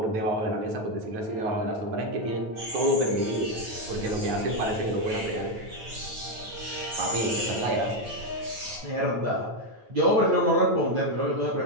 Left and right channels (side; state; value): left; late; 9.1 ms